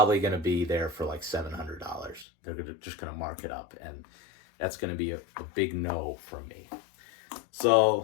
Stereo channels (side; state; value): right; drops out; at 2.2 s